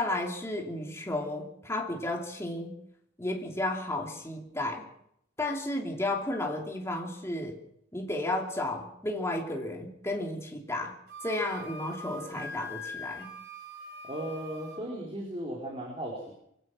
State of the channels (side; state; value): both; normal; correlation 0.50